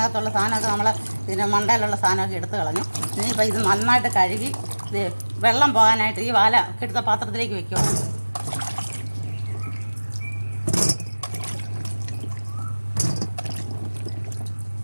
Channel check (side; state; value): both; inverted; correlation -1.00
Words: സാധനമൊക്കെ ഇതിൻ്റെ മണ്ടയിലുള്ള സാധനമൊക്കെ എടുത്ത് കളഞ്ഞു. ഇനിയിപ്പോൾ ഇത് നന്നായിട്ട് കഴുകി വെള്ളം പോകാനായിട്ട് ഈ വാല എടുത്ത പാത്രത്തിലേക്ക് വെക്കുക.